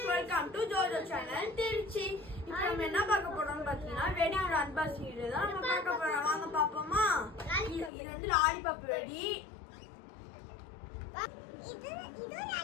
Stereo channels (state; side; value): drops out; right; at 7.9 s